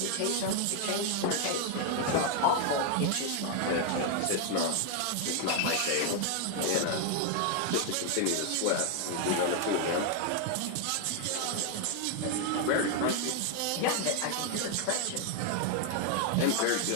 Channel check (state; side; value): different; both; correlation 0.00